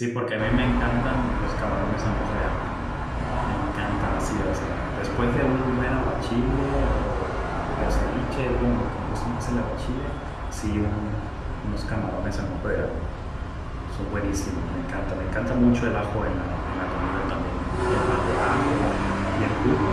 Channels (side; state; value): both; identical; correlation 1.00